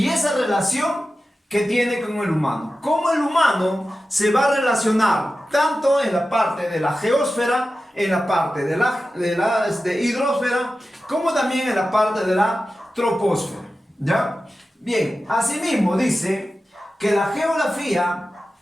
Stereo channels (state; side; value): normal; both; correlation 0.93